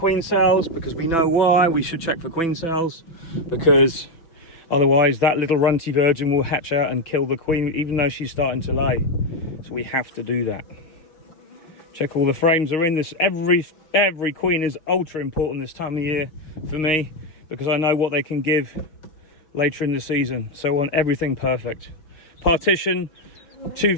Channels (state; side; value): late; right; 6.0 ms